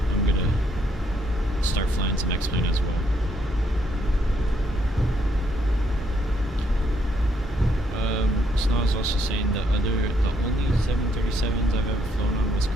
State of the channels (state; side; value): normal; both; correlation 0.73